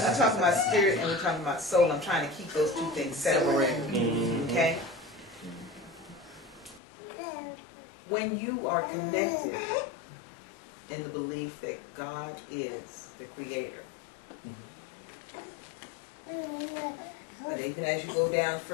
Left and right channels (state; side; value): drops out; right; at 6.8 s